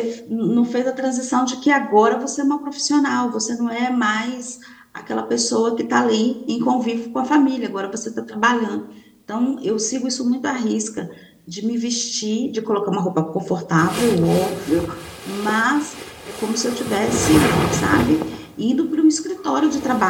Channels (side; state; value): both; identical; correlation 1.00